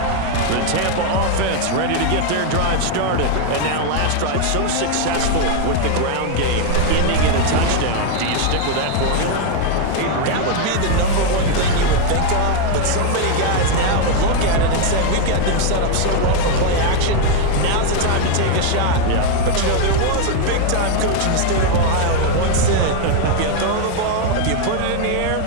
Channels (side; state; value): both; different; correlation 0.01